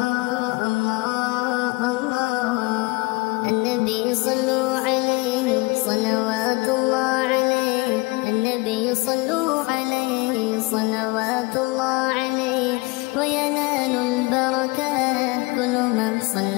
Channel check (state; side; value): quieter; right; 25.1 dB